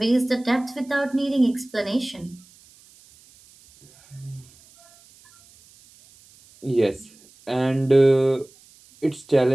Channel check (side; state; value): right; noise; hiss, 27 dB below the sound